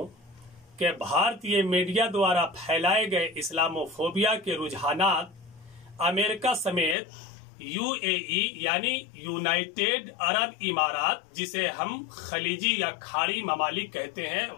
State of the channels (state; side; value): drops out; right; at 7.0 s